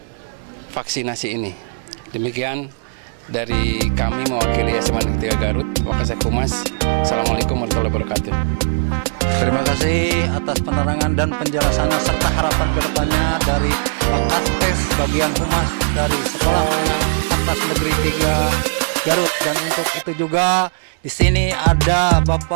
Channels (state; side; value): silent; left; digital silence